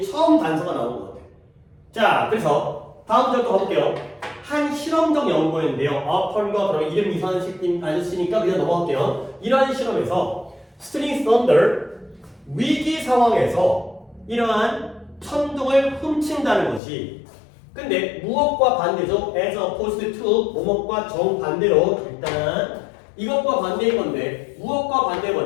처음 단서가 나온 것 같아요. 자, 그래서 다음 절도 가볼게요. 한 실험적 연구였는데요. 어펀과 그러면 이름 이상한 아저씨니까 그냥 넘어갈게요. 이러한 실험에서 스틸링 썬더, 위기 상황에서 이러한 천둥을 훔친다는 것이, 근데 무엇과 반대죠? as opposed to 뭐뭐과 정반대로 일단 이것과 반대인 건데 무엇과 반대인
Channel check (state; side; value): drops out; right; at 16.8 s